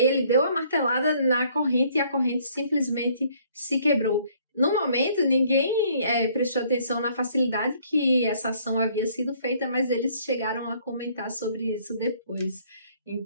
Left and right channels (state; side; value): inverted; both; correlation -0.62